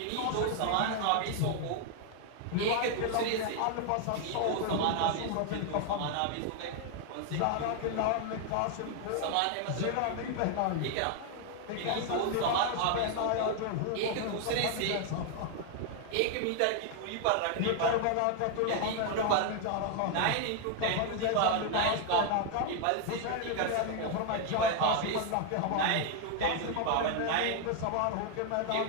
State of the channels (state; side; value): different; both; correlation 0.00